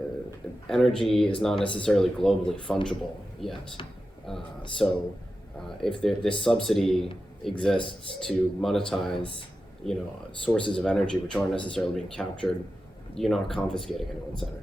energy is not necessarily globally fungible yet. So if this subsidy exists to monetize, sources of energy which aren't necessarily being captured, you're not confiscating anyone's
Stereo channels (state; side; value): normal; both; correlation 0.92